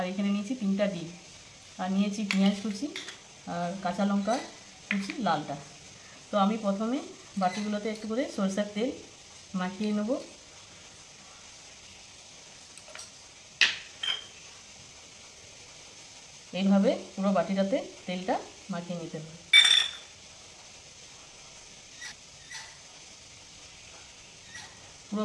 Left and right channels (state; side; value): identical; both; correlation 1.00